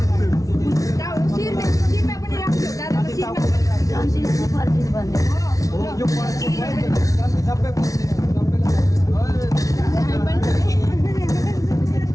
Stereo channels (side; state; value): right; late; 0.17 ms